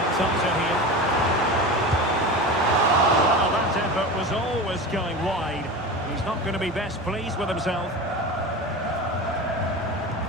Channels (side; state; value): both; normal; correlation 0.28